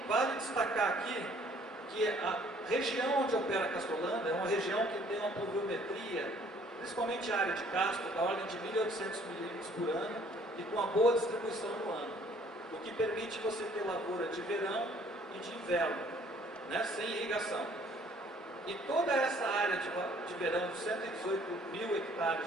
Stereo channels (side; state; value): both; normal; correlation 0.58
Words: vale destacar aqui que a região onde opera Castrolanda é uma região que tem uma pluviometria, principalmente a área de Castro, da ordem de 1.800 milímetros por ano e com uma boa distribuição no ano, o que permite você ter lavoura de verão e de inverno, né, sem irrigação. E toda essa área de verão, de 118 mil